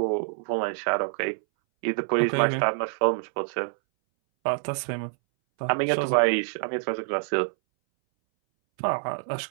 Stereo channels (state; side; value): silent; left; 61 dB below the other